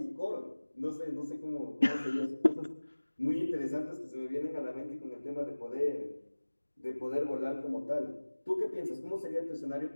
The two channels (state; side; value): inverted; both; correlation -1.00